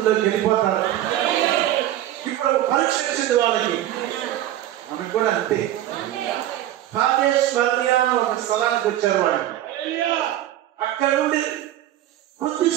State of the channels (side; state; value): left; quieter; 13.1 dB